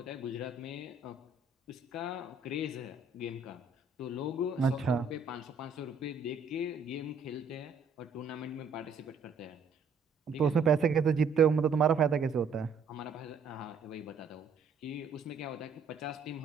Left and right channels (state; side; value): quieter; left; 4.3 dB